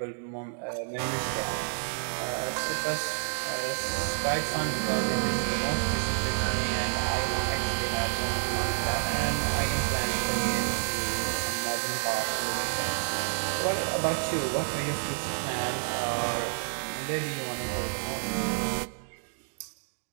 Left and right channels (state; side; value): silent; left; digital silence